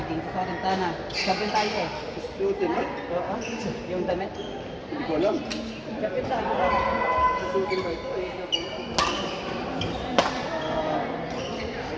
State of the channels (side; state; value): both; identical; correlation 1.00